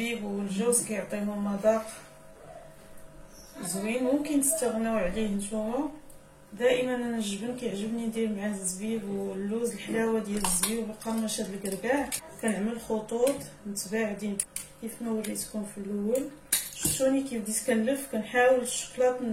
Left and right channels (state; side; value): identical; both; correlation 1.00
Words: والجوز كيعطيهم مذاق زوين، ممكن تستغناو عليه نتوما. دائما انا الجبن كيعجبني ندير معاه الزبيب واللوز، الحلاوه ديال الزبيب وقرمشه الكركاع. كنعمل خطوط متباعدين كيف ما وريتكم في الاول. شفتوني كيف بديت كنلف، كنحاول الشكلاط